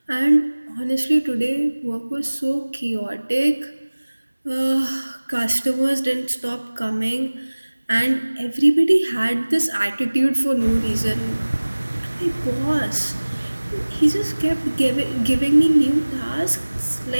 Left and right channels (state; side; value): inverted; both; correlation -1.00